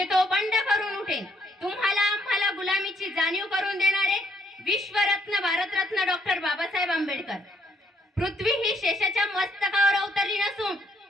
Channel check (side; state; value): both; normal; correlation 0.70